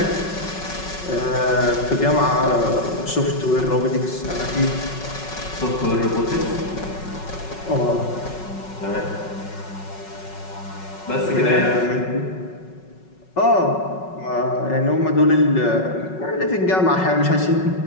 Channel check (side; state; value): right; late; 5.4 ms